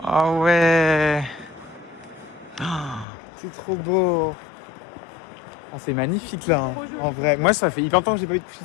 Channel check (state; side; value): drops out; right; at 3.1 s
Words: ouais. C'est trop beau. Oh, c'est magnifique là, hein. En vrai. Moi, ça fait hyper longtemps que j'ai pas eu de coucher